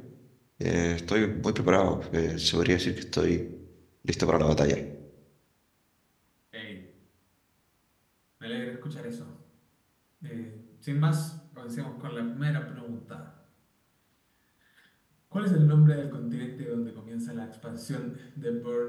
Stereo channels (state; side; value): identical; both; correlation 1.00